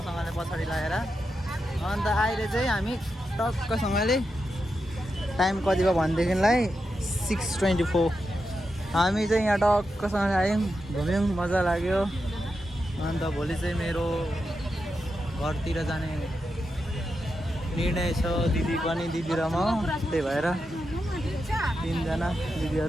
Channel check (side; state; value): both; normal; correlation 0.87